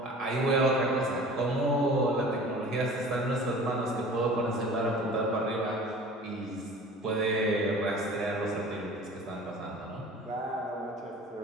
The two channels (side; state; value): both; normal; correlation 0.43